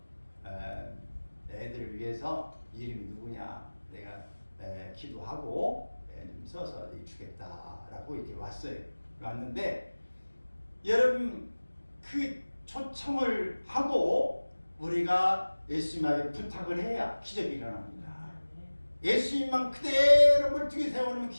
애들을 위해서 이름이 누구냐 내가 기도하고 좀 써서 주겠다라고 이렇게 왔어요. 왔는데 여러분 그 초청을 하고 우리가 예수님에게 부탁을 해야 기적이 일어납니다. 예수님만 그대로 멀뚱히 세워놓으면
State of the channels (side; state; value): both; inverted; correlation -1.00